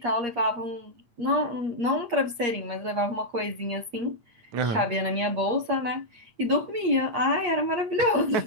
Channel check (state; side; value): late; left; 8.5 ms